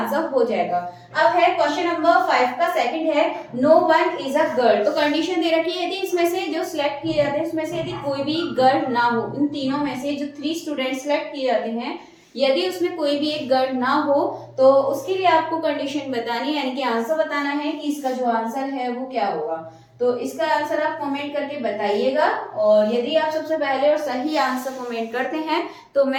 हो जाएगा। अब है क्वेश्चन नंबर 5 का सेकंड है no one is a girl, तो कंडीशन दे रखी है यदि इसमें से जो सिलेक्ट किए जाते हैं उसमें से यदि कोई भी गर्ल ना हो, इन तीनों में से जो 3 स्टूडेंट सिलेक्ट किए जाते हैं यदि उसमें कोई भी एक गर्ल ना हो तो उसके लिए आपको कंडीशन बतानी है, यानी कि आंसर बताना है कि इसका जो आंसर है वो क्या होगा, तो इसका आंसर आप कमेंट करके बताइएगा, और यदि आप सबसे पहले और सही आंसर कमेंट करते हैं तो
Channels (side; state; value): both; identical; correlation 1.00